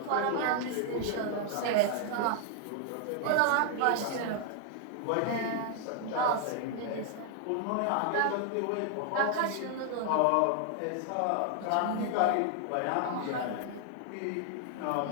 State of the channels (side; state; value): both; different; correlation 0.00